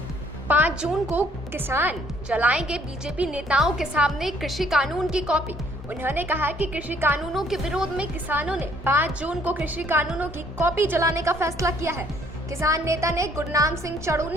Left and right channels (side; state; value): both; normal; correlation 0.63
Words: 5 जून को किसान जलाएंगे बीजेपी नेताओं के सामने कृषि कानून की कॉपी। उन्होंने कहा कि कृषि कानूनों के विरोध में किसानों ने 5 जून को कृषि कानूनों की कॉपी जलाने का फैसला किया है। किसान नेता ने गुरनाम सिंह